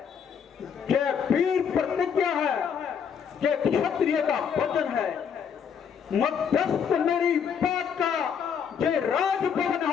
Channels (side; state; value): right; quieter; 7.3 dB